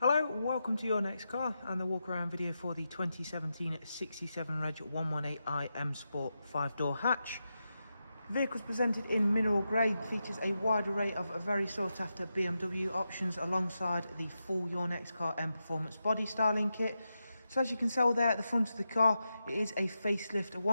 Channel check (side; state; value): both; inverted; correlation -0.88